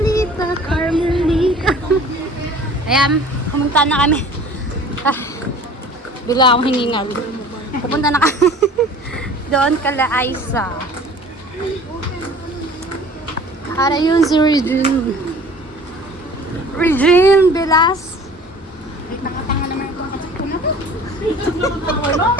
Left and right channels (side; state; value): both; normal; correlation 0.47